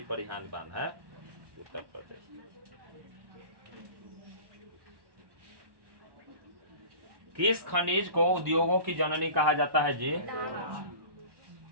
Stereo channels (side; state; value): left; late; 1.1 ms